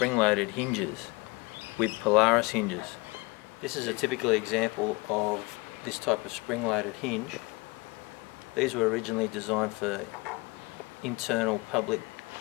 hinges with Polaris hinges. This is a typical example of this type of spring-loaded hinge. These were originally designed for internal public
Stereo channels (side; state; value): right; quieter; 25.5 dB